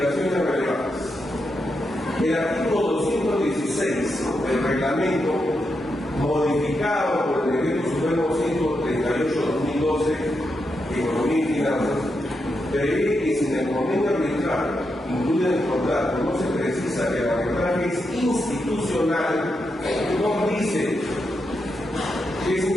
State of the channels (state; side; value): normal; both; correlation 0.85